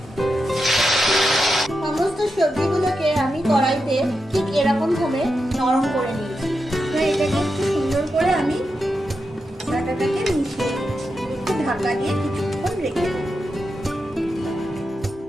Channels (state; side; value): normal; both; correlation 0.88